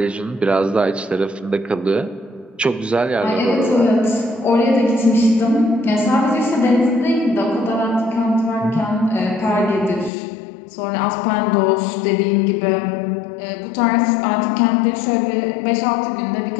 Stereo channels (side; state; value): right; drops out; at 10.1 s